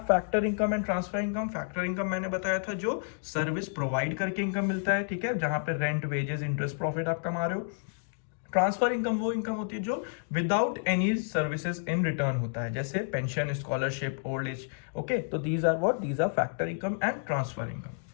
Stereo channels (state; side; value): silent; right; digital silence